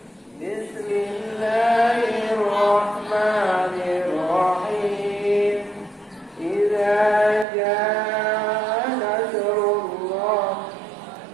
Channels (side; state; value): left; drops out; at 7.5 s